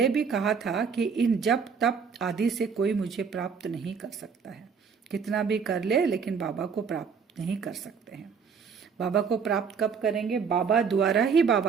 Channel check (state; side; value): quieter; left; 6.1 dB